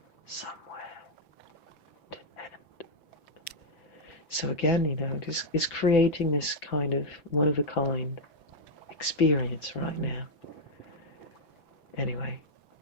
So again, it's creating this kind of one-of-a-kind experience right now. Anyway,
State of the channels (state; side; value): late; right; 6.0 ms